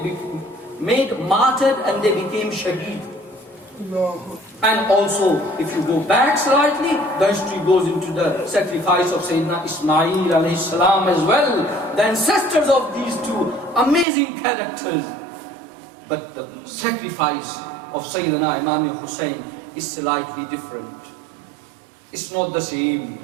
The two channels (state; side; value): drops out; left; at 14.1 s